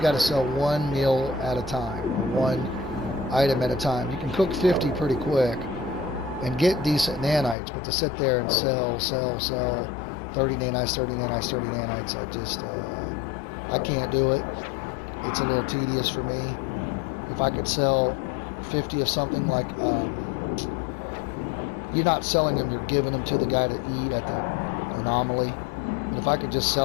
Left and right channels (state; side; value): drops out; right; at 7.6 s